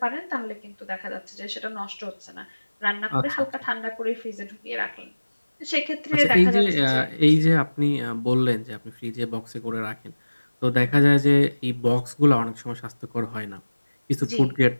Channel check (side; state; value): both; inverted; correlation -1.00